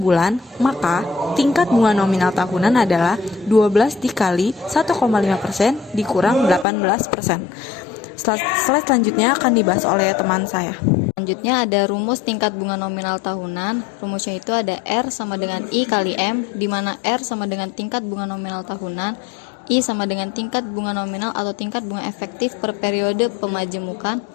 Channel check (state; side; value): drops out; right; at 6.7 s